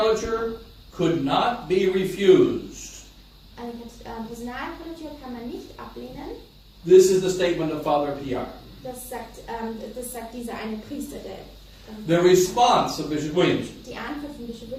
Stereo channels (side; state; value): both; identical; correlation 1.00